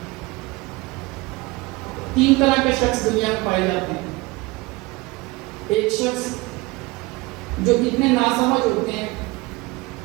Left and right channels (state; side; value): quieter; left; 22.8 dB